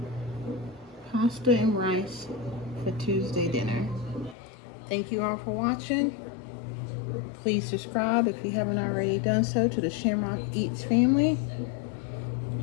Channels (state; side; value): drops out; right; at 4.4 s